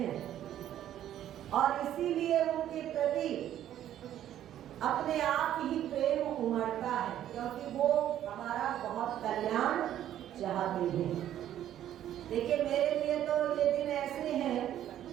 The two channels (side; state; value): left; quieter; 11.6 dB